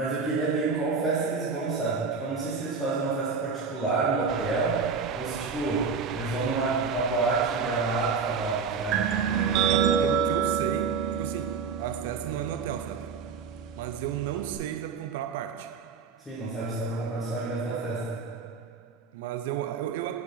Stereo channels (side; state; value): left; quieter; 5.4 dB